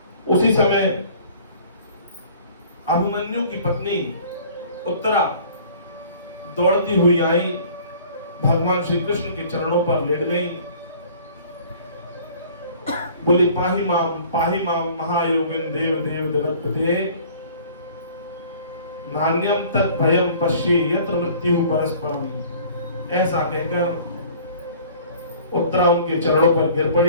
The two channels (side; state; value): both; inverted; correlation -0.50